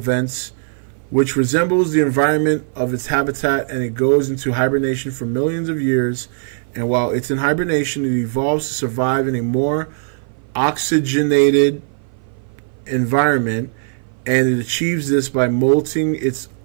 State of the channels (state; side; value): silent; left; 58 dB below the other